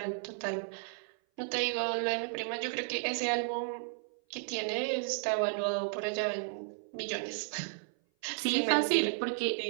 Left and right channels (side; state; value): left; silent; 55 dB below the other